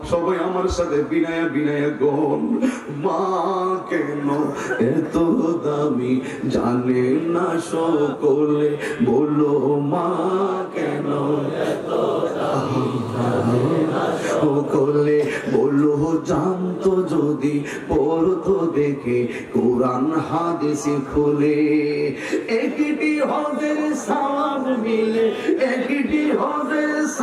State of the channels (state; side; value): identical; both; correlation 1.00